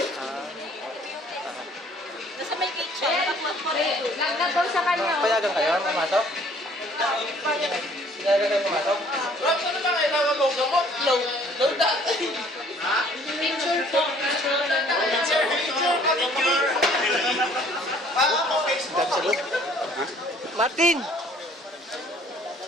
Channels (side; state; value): both; normal; correlation 0.57